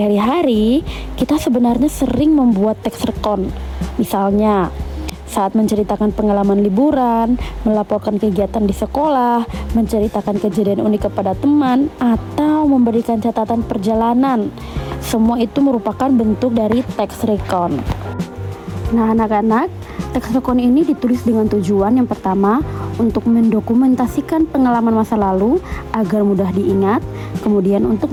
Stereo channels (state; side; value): identical; both; correlation 1.00